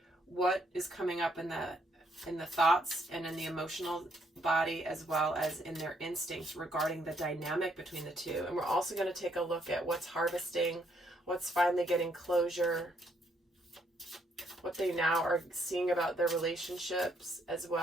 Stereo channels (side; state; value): both; normal; correlation 0.71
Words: What is coming up in the thoughts and in the emotional body, as well as in their instincts regarding the dynamic between the two. And we're also going to take a look at what's harvesting, what's finally getting closure, what they now are seeing about their relationships, as